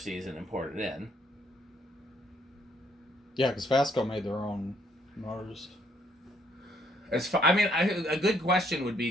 and imported in. Yeah, because FASCO made their own motors. A good question would be:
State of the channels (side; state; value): both; normal; correlation 0.69